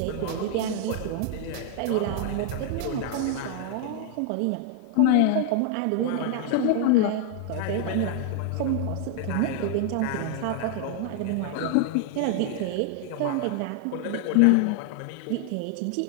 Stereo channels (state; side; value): different; both; correlation 0.00